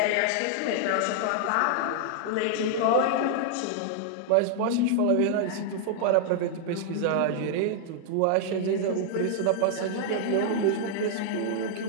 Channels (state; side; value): different; both; correlation -0.01